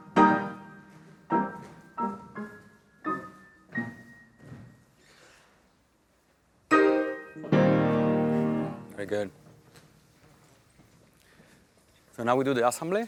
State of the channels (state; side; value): identical; both; correlation 1.00